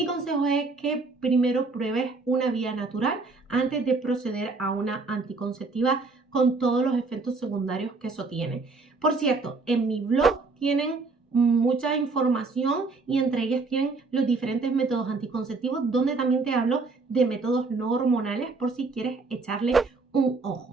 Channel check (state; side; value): quieter; left; 3.9 dB